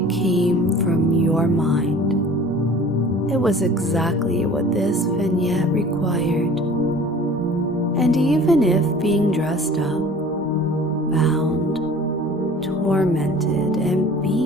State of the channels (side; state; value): both; normal; correlation 0.46